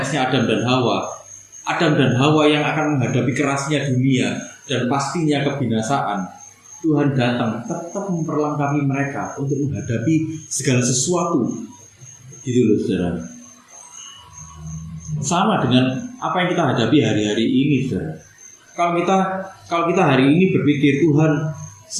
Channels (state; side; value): identical; both; correlation 1.00